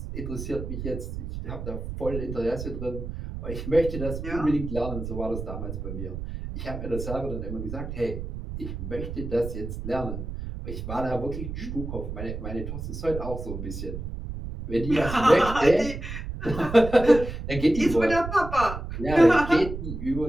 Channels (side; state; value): right; noise; rumble, 7 dB below the sound